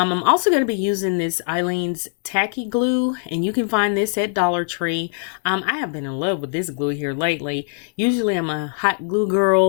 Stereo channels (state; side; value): silent; right; 65 dB below the other